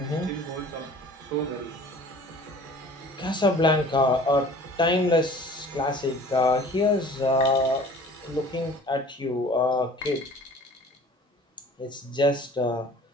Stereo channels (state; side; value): normal; both; correlation 0.48